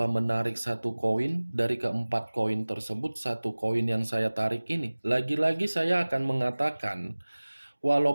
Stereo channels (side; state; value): both; inverted; correlation -1.00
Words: menarik satu koin dari keempat koin tersebut, satu koin yang saya tarik ini, lagi-lagi saya akan mengatakan,